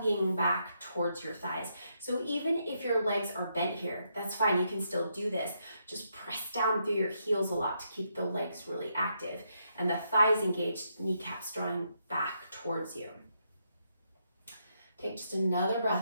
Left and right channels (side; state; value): both; inverted; correlation -0.78